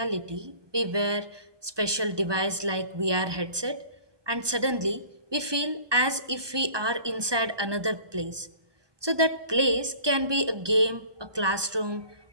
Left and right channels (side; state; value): left; late; 1.2 ms